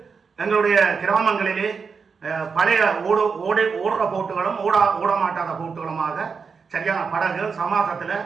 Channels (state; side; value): quieter; left; 5.5 dB